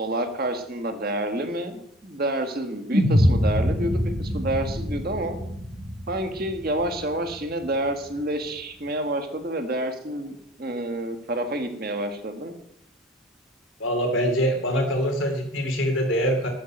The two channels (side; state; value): both; normal; correlation 0.46